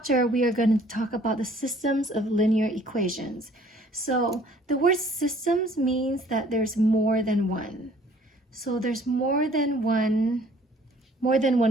we are going to talk about the systems of linear equations. So the word systems means that there's more than one. So there's more than one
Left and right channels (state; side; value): normal; both; correlation 0.56